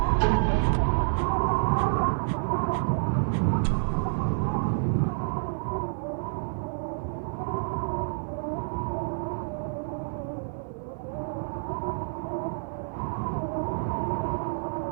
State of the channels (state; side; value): silent; left; 59 dB below the other